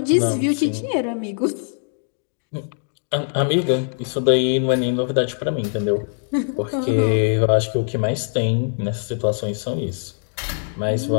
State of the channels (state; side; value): silent; right; digital silence